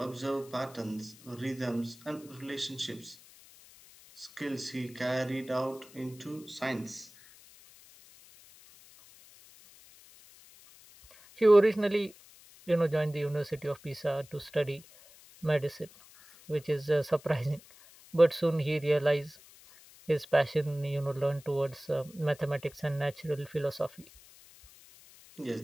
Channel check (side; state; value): left; noise; hiss, 23 dB below the sound